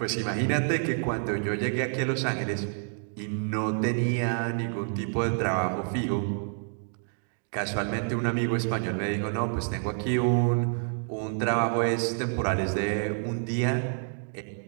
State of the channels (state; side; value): silent; left; 59 dB below the other